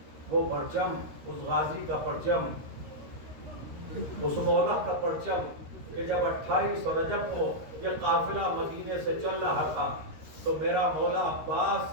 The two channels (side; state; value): left; late; 13 ms